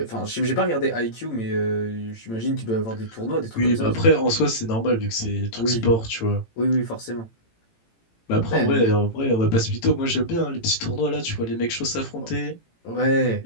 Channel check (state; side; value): late; right; 18 ms